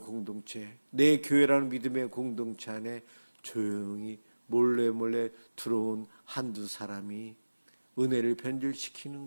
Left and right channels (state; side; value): inverted; both; correlation -1.00